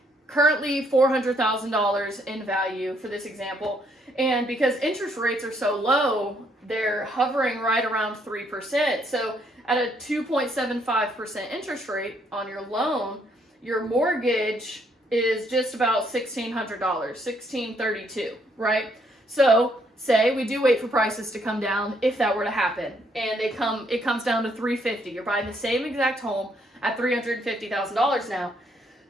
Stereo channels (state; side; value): normal; both; correlation 0.70